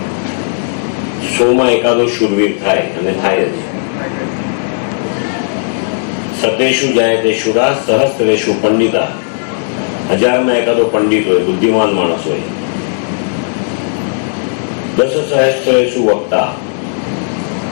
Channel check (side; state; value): right; silent; digital silence